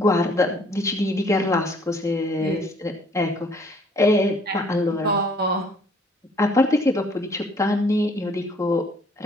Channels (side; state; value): both; normal; correlation 0.60